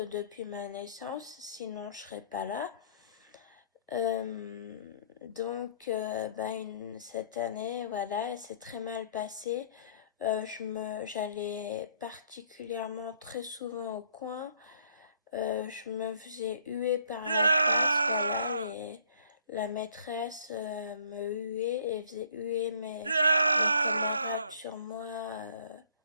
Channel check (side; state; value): both; inverted; correlation -0.60